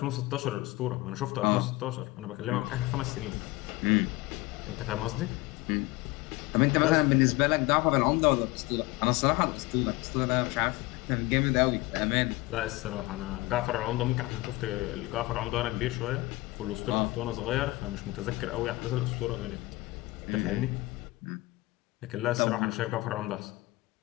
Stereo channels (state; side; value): quieter; right; 20.7 dB